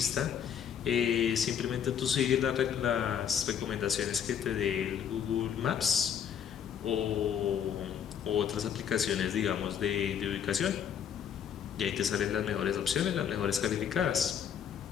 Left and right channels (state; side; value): quieter; right; 8.5 dB